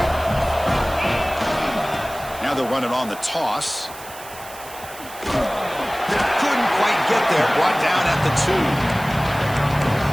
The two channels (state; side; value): noise; right; hiss, 16 dB below the sound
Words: Now they'll run it on the toss. Couldn't quite get there. Brought down at the